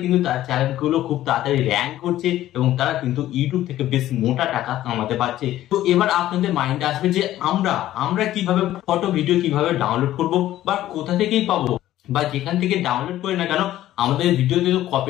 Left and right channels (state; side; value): quieter; right; 13.8 dB